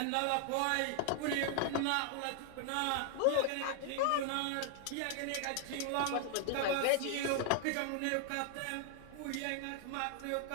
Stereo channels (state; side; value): different; both; correlation 0.00